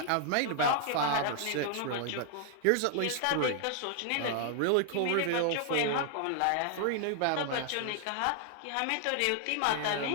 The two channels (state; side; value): different; both; correlation 0.00